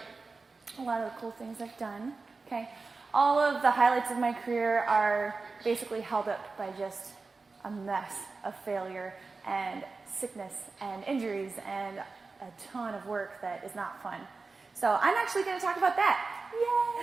a lot of the cool things I've done, okay? All of the highlights of my career are basically held up by just a mess of failure and sickness and injuries and a ton of work that is not fun. So I'm actually going to talk about that.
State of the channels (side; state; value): left; quieter; 4.1 dB